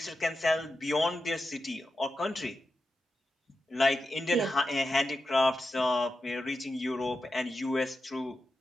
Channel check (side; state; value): both; normal; correlation 0.89